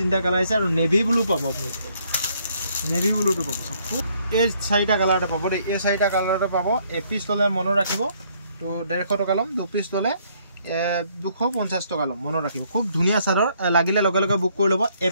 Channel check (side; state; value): both; inverted; correlation -0.67